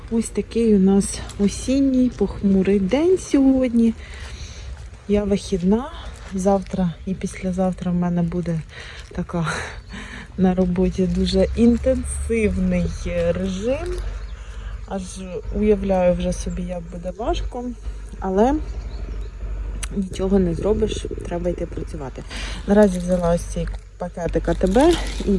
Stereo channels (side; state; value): both; identical; correlation 1.00